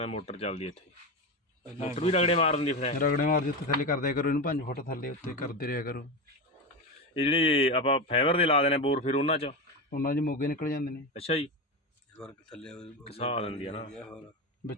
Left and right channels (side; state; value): both; normal; correlation 0.18